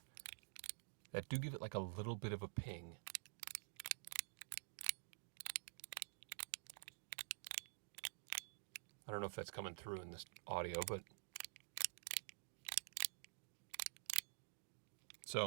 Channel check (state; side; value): silent; left; digital silence